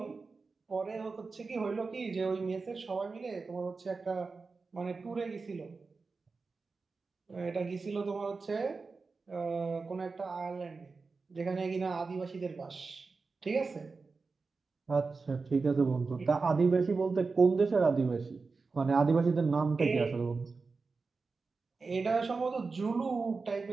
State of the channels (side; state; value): left; quieter; 4.3 dB